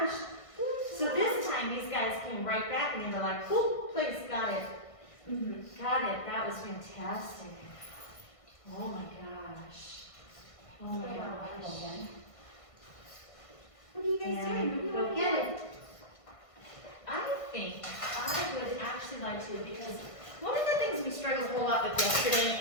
So this time these guys came right back and they were like, "Cool, place, got it, got it." That was fantastic. Oh my gosh. Oh my gosh. What are you guys doing? Go get it. I think I would actually like to, because one of the things we struggled a whole lot with yesterday,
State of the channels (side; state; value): right; late; 1.5 ms